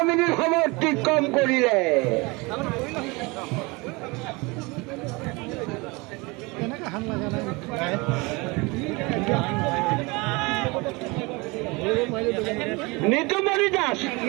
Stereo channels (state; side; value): quieter; left; 25.8 dB